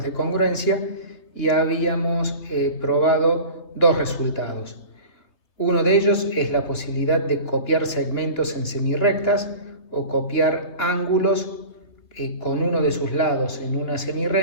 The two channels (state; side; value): late; right; 3.2 ms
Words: de congruencia y habíamos probado dos resultados. Uno de ellos es la posibilidad de copiar segmentos en semirrectas o copiar ángulos con uno de sus lados en una